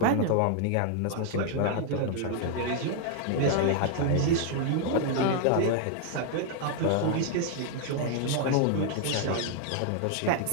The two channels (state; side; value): different; both; correlation 0.00